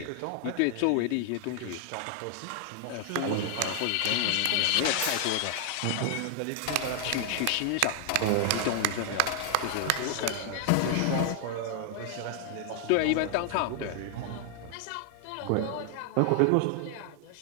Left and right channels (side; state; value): both; different; correlation 0.00